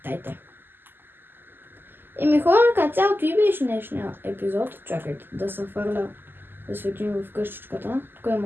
Хора, като цялото и беше днешния епизод. Чакайте да се фърля, да светим в къщичката. Тук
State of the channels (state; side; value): late; left; 0.096 ms